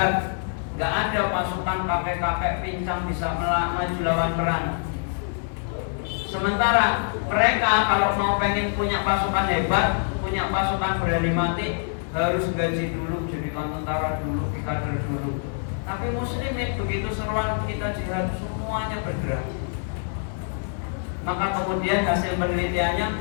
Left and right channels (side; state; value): right; silent; digital silence